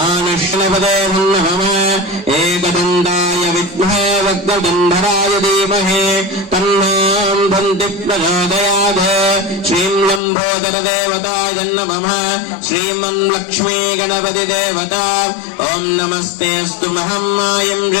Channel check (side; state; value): right; drops out; at 10.2 s